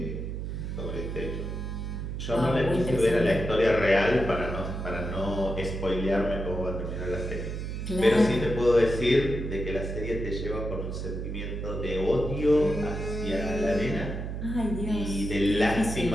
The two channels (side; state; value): right; noise; hum, 5 dB below the sound